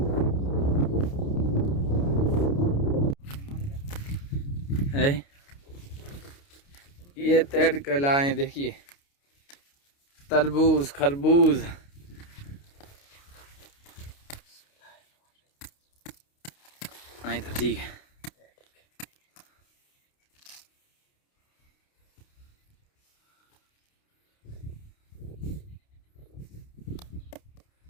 हैं। ये तेड़ कलाएं देखिए, तरबूज, खरबूज। नहीं तो ठीक है।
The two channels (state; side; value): late; right; 29 ms